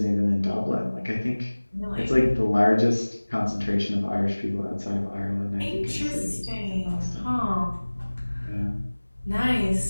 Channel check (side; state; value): both; inverted; correlation -1.00